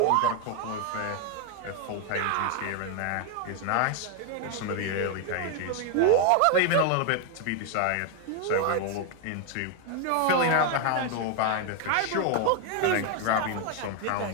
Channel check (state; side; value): different; both; correlation 0.01